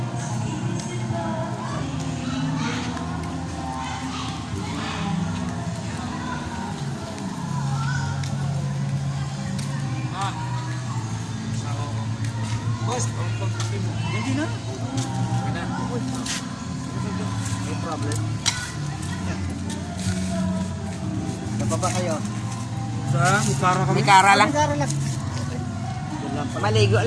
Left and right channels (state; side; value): identical; both; correlation 1.00